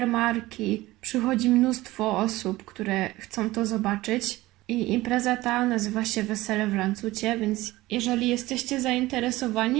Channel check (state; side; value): quieter; left; 18.4 dB